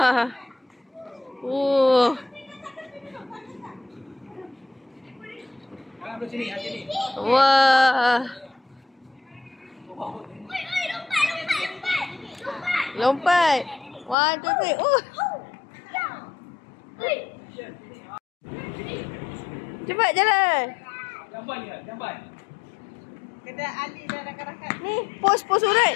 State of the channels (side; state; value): right; drops out; at 14.2 s